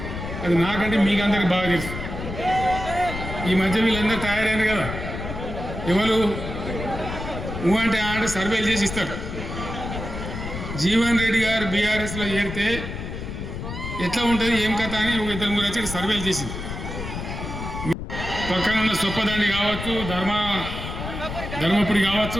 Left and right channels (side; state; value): left; noise; rumble, 7 dB below the sound